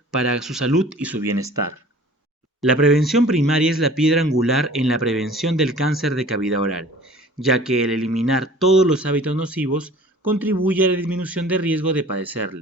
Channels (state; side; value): normal; both; correlation 0.47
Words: para su salud y su bienestar. La prevención primaria es la piedra angular en la prevención del cáncer de cavidad oral, ya que el eliminar todos los hábitos nocivos contribuye a la disminución de riesgo de